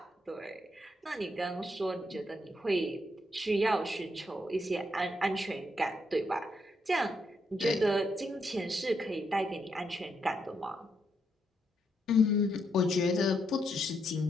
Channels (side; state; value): both; normal; correlation 0.78